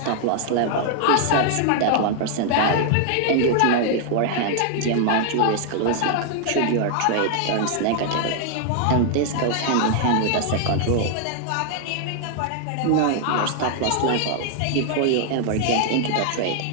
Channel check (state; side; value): different; both; correlation 0.00